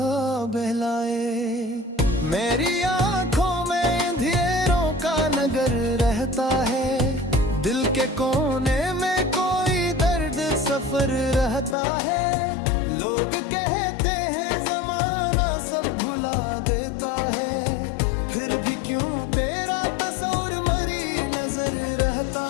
बहलाए। मेरी आंखों में अंधेरों का नगर रहता है, दिल के कोने में कोई दर्द सफर रहता है। लोग कहते हैं जमाना सब भुला देता है, फिर भी क्यों तेरा तस्वीर मरी नजर रहता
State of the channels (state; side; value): drops out; right; at 11.8 s